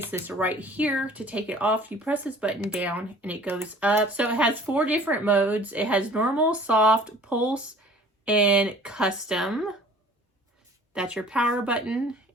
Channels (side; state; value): both; normal; correlation 0.49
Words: this right here. To take it off, you press this button down and it goes up. So it has 4 different modes. It has normal, soft, pulse, and custom. That's your power button,